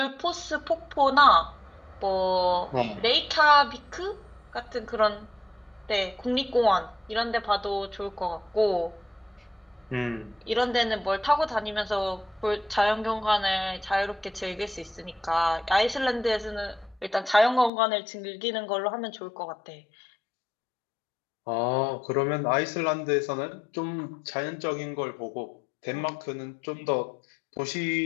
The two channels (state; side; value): drops out; right; at 17.7 s